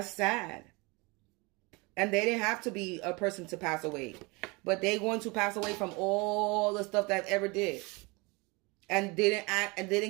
sad. And they didn't have to be a person to pass away. But they're going to pass away from all the stuff that ever did. And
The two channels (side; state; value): left; quieter; 26.7 dB